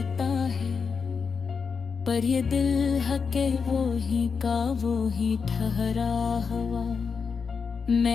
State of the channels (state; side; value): quieter; right; 5.6 dB